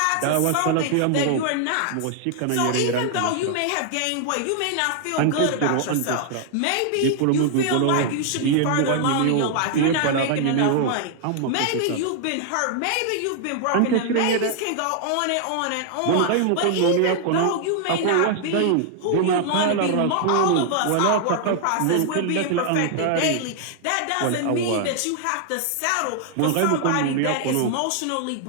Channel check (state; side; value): different; both; correlation 0.00